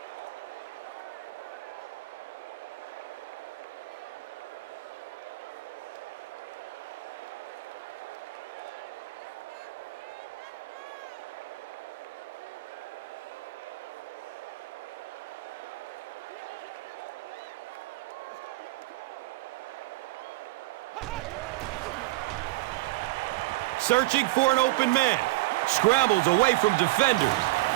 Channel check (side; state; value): left; quieter; 20.6 dB